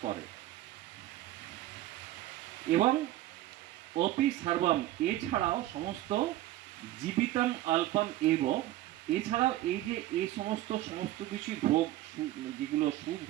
করে। এবং অপি সর্বম এছাড়াও সমস্ত জীবিতম অল্পম এব, এছাড়াও এই যে এই সমস্ত কিছু ভোগ যেগুলো সুখ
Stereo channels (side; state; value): left; quieter; 15.1 dB